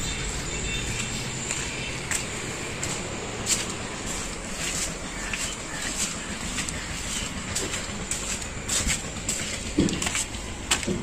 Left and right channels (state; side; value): identical; both; correlation 1.00